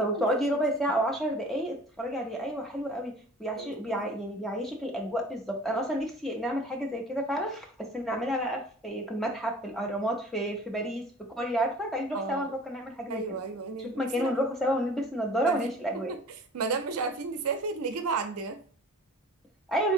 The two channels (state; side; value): normal; both; correlation 0.44